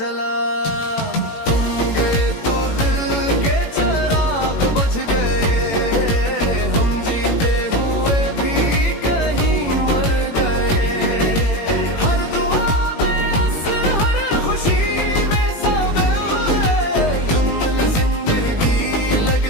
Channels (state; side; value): late; right; 18 ms